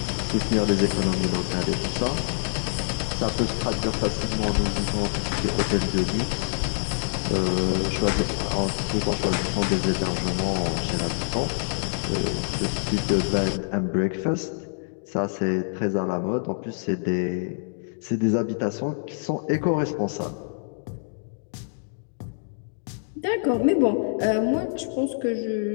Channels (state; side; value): silent; right; digital silence